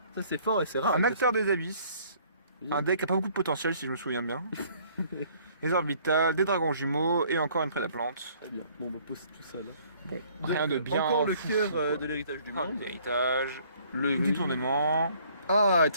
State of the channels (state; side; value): inverted; both; correlation -0.59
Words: Ça c'est fort et c'est rare. un acteur des abysses, Oui. un deck qui a pas beaucoup de potentiel si je me souviens bien, des orbitales, des dragons jumeaux et encore une prédaplante. Très bien. Bon, on va poser tout ça là. Bon, rien de bien. Encore le fou, cœur quoi. de l'héritage du Ah, monde. l'héritage, Le du tournement. Ah,